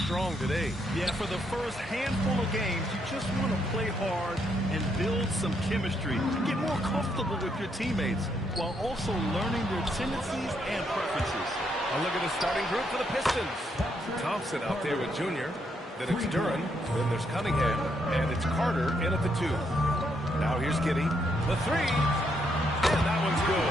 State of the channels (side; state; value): both; normal; correlation 0.76